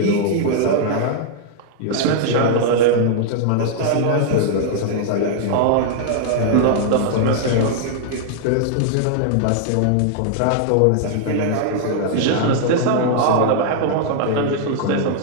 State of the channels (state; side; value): different; both; correlation -0.01